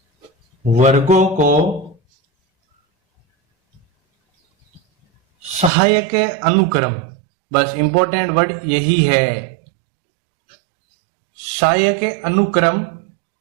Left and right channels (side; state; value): left; drops out; at 5.7 s